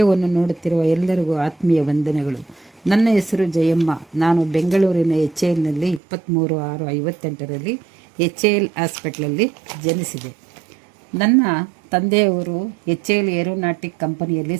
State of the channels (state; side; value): drops out; left; at 6.0 s